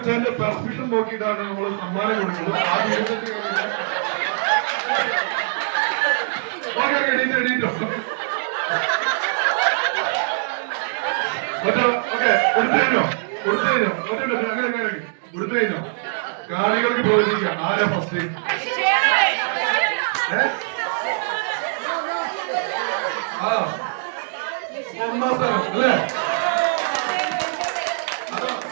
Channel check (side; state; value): left; silent; digital silence